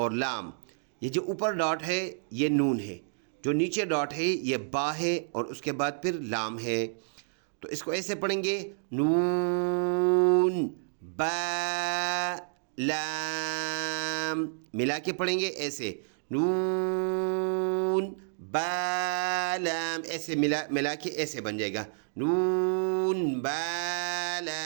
لام۔ یہ جو اوپر ڈاٹ ہے یہ نون ہے، جو نیچے ڈاٹ ہے یہ با ہے اور اس کے بعد پھر لام ہے، تو اس کو ایسے پڑھیں گے نون با لام، ملا کے پڑھیں گے ایسے نون با لام، ایسے ملا کے ایسے بن جائے گا نون با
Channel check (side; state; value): left; silent; digital silence